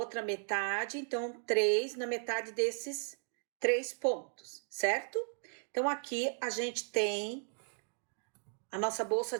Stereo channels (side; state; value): left; silent; 54 dB below the other